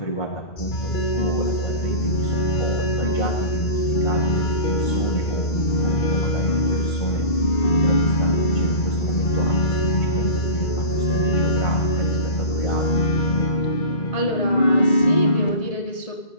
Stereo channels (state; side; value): late; right; 1.8 ms